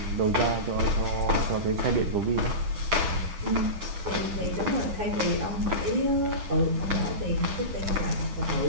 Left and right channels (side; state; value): left; late; 10 ms